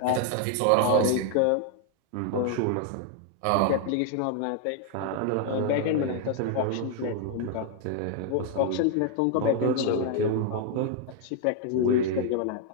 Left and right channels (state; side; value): different; both; correlation 0.00